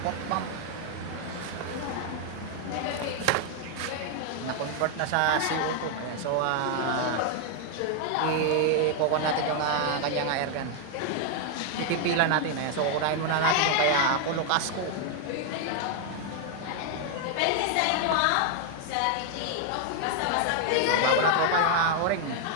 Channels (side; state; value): both; different; correlation 0.00